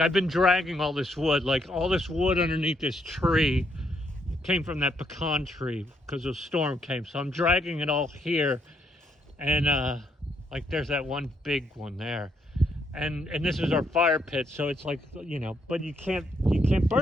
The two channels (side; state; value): both; normal; correlation 0.74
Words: been dragging all this wood, like all this wood underneath this tree came from that pecan tree because the storm came. So I'm dragging it all here, and like there's that one big one there, and this is our fire pit. So it's like, you know, but you can't